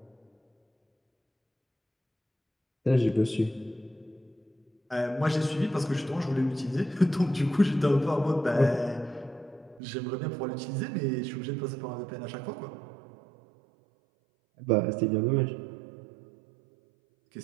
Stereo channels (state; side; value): drops out; left; at 9.8 s